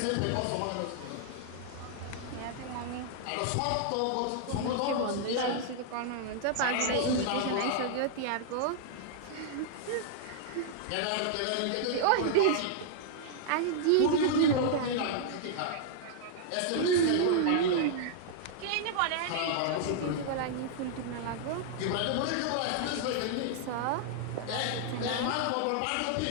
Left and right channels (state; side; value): different; both; correlation -0.01